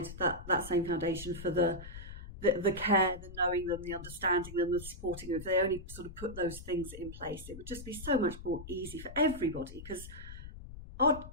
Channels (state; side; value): noise; left; rumble, 13 dB below the sound